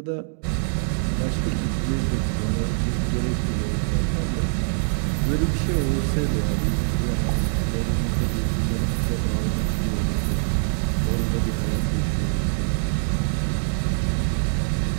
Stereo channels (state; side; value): silent; left; digital silence